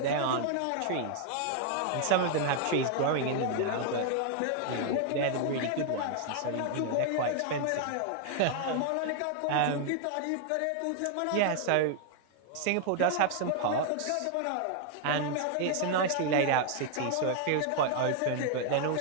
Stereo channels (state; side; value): different; both; correlation 0.00